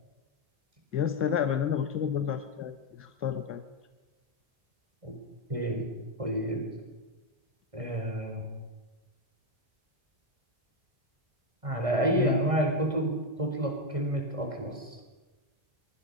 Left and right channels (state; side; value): late; left; 1.6 ms